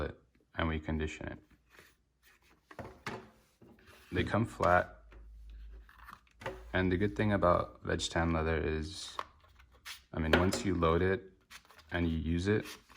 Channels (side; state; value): both; identical; correlation 1.00